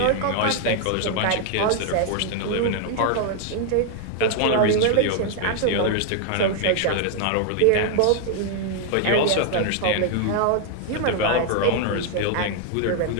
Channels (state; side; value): different; both; correlation 0.00